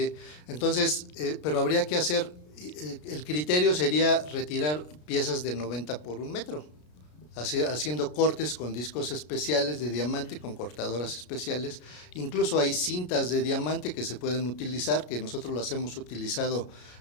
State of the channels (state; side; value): late; right; 33 ms